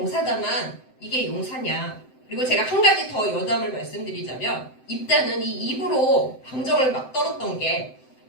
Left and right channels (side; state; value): right; late; 7.8 ms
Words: 이게 용사냐. 그리고 제가 한 가지 더 여담을 말씀드리자면 입다는 이 입으로 방정을 막 떨었던 게